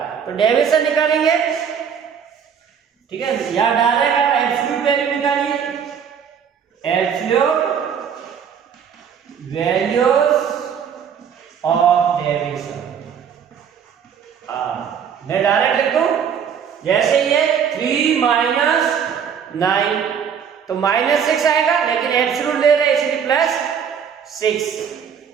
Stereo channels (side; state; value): left; quieter; 7.6 dB